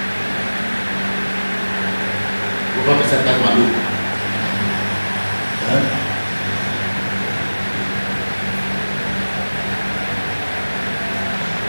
Ou vai pensar que está maluco?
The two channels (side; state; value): both; inverted; correlation -1.00